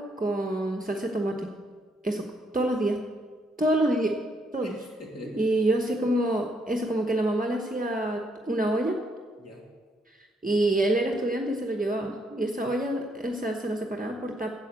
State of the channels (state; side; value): normal; both; correlation 0.73